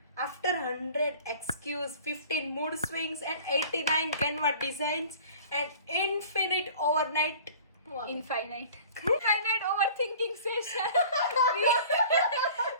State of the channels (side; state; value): both; inverted; correlation -0.46